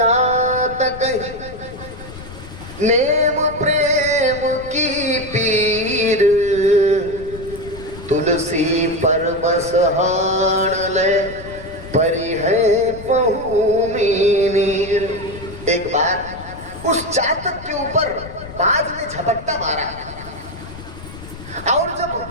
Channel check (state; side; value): noise; left; rumble, 14 dB below the sound